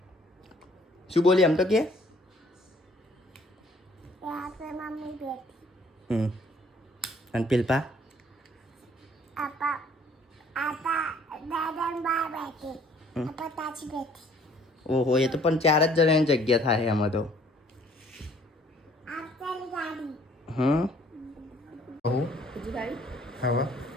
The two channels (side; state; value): both; normal; correlation 0.59